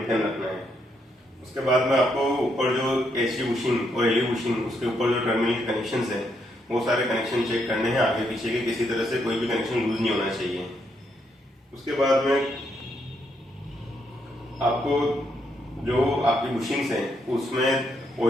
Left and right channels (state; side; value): normal; both; correlation 0.77